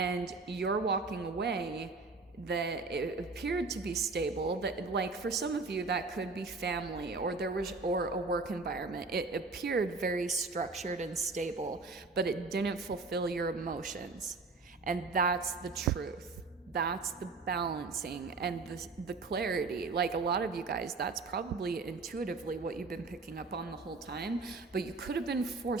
you're walking away. That it appeared to be stable, that like for some of you that could be family or a work environment. It appeared very structured and stable, but it didn't fulfill your emotions. And that's the truth. That's the balancing and the clarity. Like a lot of you guys, that's probably intuitively what you've been picking up on the whole time, but you could have been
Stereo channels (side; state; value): left; quieter; 3.9 dB